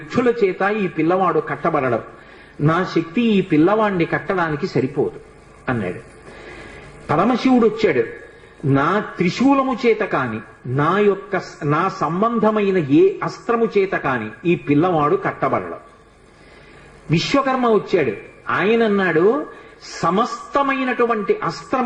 చేత ఈ పిల్లవాడు కట్టబడడం, నా శక్తి ఈ పిల్లవాడిని కట్టడానికి సరిపోదు అన్నాడు. పరమశివుడు వచ్చాడు, నా త్రిశూలము చేత కాని నా సంబంధమైన ఏ అస్త్రము చేత కాని ఈ పిల్లవాడు కట్టబడడం. విశ్వకర్మ వచ్చాడు. ఆయన అన్నాడు, సమస్తమైనటువంటి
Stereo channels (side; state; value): both; identical; correlation 1.00